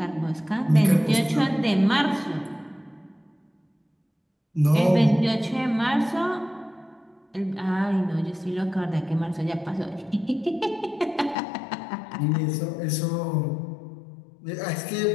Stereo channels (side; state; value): right; drops out; at 11.4 s